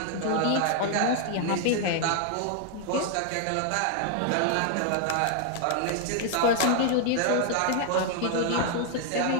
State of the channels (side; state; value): both; different; correlation 0.00